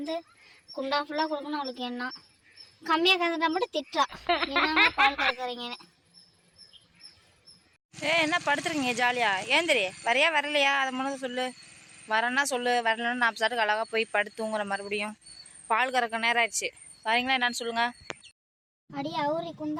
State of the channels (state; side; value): identical; both; correlation 1.00